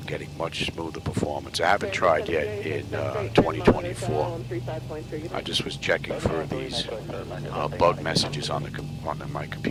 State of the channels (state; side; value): identical; both; correlation 1.00